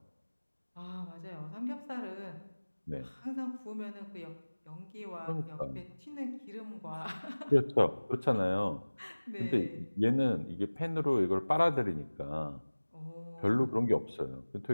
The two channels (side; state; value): both; inverted; correlation -1.00